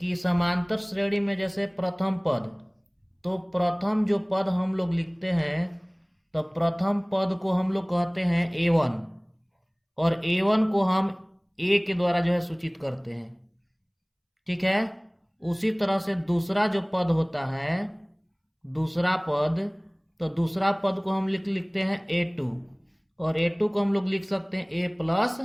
कि समांतर श्रेणी में जैसे प्रथम पद, तो प्रथम जो पद हम लोग लिखते हैं तो प्रथम पद को हम लोग कहते हैं A1, और A1 को हम A के द्वारा जो है सूचित करते हैं। ठीक है। उसी तरह से दूसरा जो पद होता है, दूसरा पद, तो दूसरा पद को हम लिखते हैं A2, और A2 को हम लोग लिख सकते हैं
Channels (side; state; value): both; identical; correlation 1.00